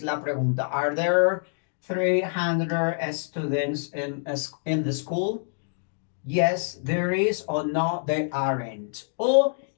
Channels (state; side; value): silent; right; digital silence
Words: la pregunta. Are there 300 students in the school? Yes, there is, or no, there aren't. Or